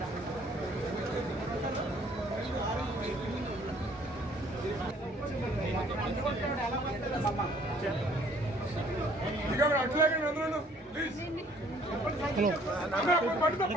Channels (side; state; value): both; normal; correlation 0.59